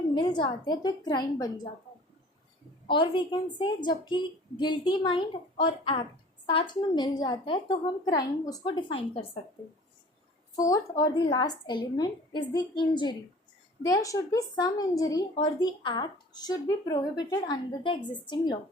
मिल जाते हैं तो एक क्राइम बन जाता है। और वी कैन से जबकि गिल्टी माइंड और एक्ट साथ में मिल जाता है तो हम क्राइम उसको डिफाइन कर सकते हैं। फोर्थ और the last element is the injury. There should be some injury or the act should be prohibited under the existing law.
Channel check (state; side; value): normal; both; correlation 0.47